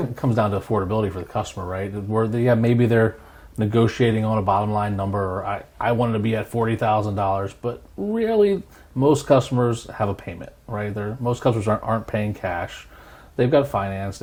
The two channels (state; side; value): identical; both; correlation 1.00